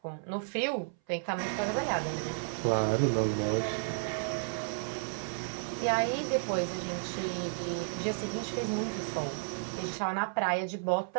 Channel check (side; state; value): left; silent; 56 dB below the other